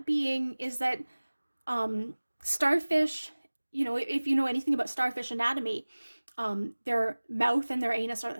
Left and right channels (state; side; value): inverted; both; correlation -1.00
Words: being is that starfish, if you know anything about starfish anatomy, their mouth and their anus are